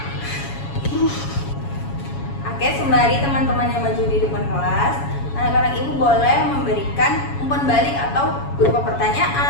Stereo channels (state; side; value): late; right; 7.2 ms